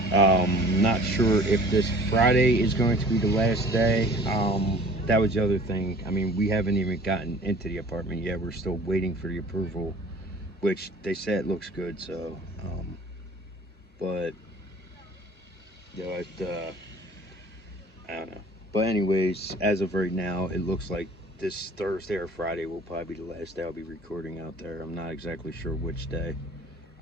Not sure if this Friday is going to be the last day. That was the other thing. I mean, we haven't even gotten into the apartment yet. We're still waiting for the approval, which they said it looks good. So, but I don't know. But anyways, as of right now, it looks like this Thursday or Friday will probably be the last day I'll be recording out there. I'm not exactly sure which day.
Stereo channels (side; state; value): both; normal; correlation 0.48